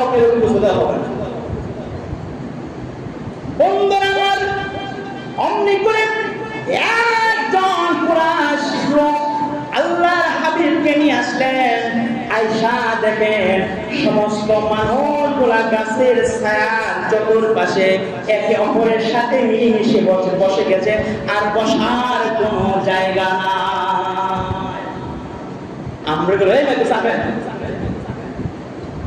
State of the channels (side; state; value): both; identical; correlation 1.00